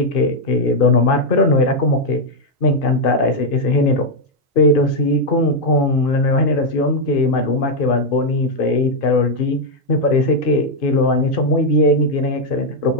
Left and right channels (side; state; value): both; normal; correlation 0.00